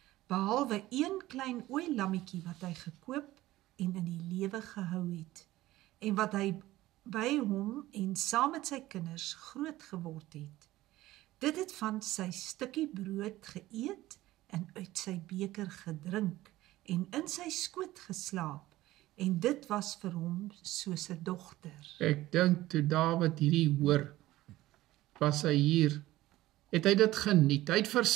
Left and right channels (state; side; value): quieter; left; 16.5 dB